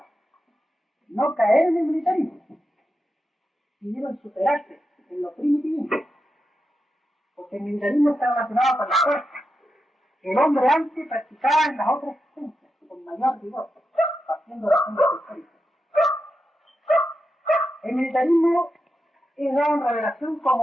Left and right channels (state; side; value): normal; both; correlation 0.88